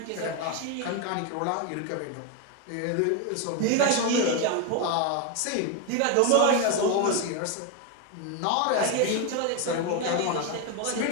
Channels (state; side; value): different; both; correlation 0.02